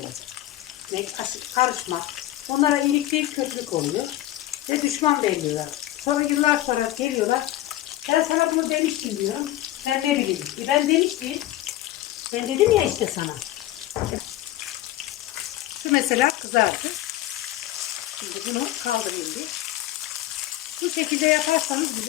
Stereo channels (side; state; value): right; quieter; 15.0 dB